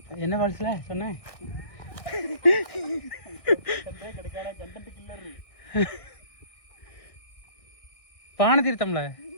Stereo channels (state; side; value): late; right; 1.6 ms